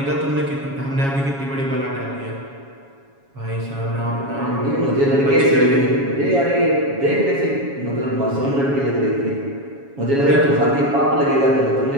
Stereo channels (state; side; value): late; left; 7.2 ms